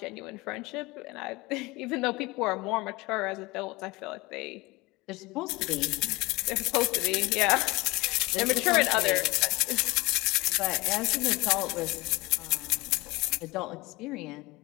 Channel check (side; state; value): right; quieter; 22.3 dB